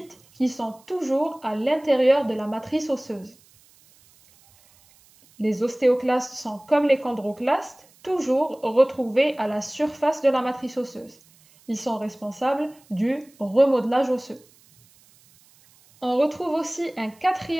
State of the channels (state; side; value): noise; right; hiss, 29 dB below the sound